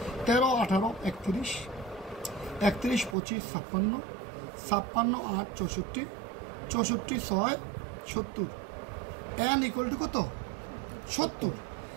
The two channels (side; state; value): left; drops out; at 3.2 s